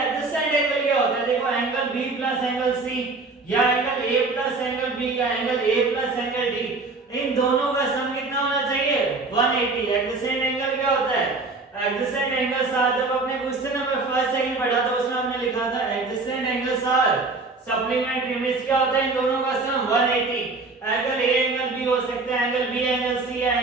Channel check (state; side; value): quieter; left; 3.7 dB